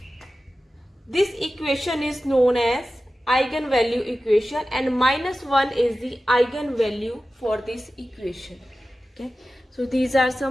this equation is known as eigenvalue equation, and minus 1 is the eigenvalue for this equation. Okay, so these are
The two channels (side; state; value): both; normal; correlation 0.94